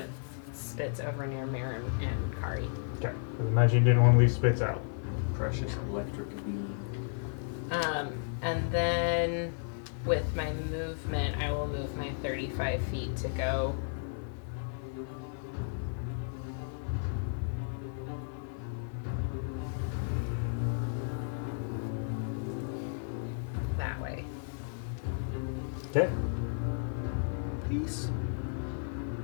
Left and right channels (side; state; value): right; silent; 56 dB below the other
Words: Spitz over near Maren and Kari. Okay, 'cause imagine you didn't want to leave Spitz out. Precious electric beam. And then with my movement, I will move my 35 feet to go that way. Okay. Peace.